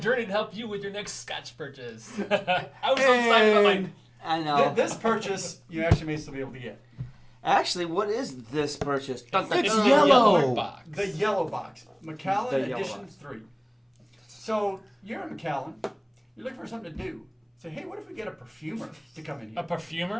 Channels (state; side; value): identical; both; correlation 1.00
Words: to help you with your next Scotch purchase. I was so excited about my... I know. This purchase you actually may still be able to get. Actually, what is this purchase? It's yellow. box. The yellow box. Macallan The yellow Edition box. 3. So you're in Macallan. You're looking for something to do. Say, hey, what if we get a perfumer to come in A here?